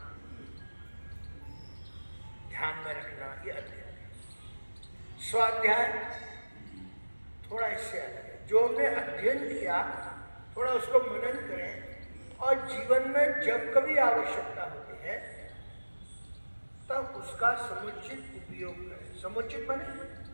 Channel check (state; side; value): inverted; both; correlation -1.00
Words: ध्यान में रखना, ये अध्ययन। स्वाध्याय थोड़ा इससे अलग है। जो हमने अध्ययन किया थोड़ा उसको मनन करें और जीवन में जब कभी आवश्यकता होती है तब उसका समुचित उपयोग करें। समुचित माने